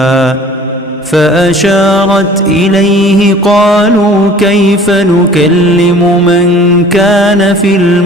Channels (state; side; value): normal; both; correlation 0.49